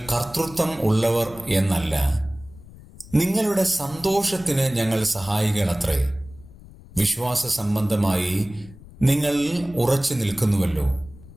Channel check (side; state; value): left; noise; rumble, 20 dB below the sound